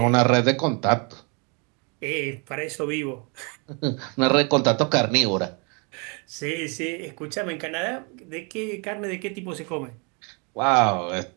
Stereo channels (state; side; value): quieter; left; 34.0 dB